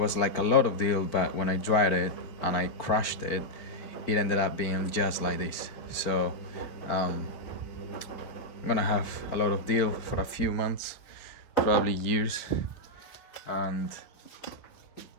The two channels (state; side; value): late; right; 4.4 ms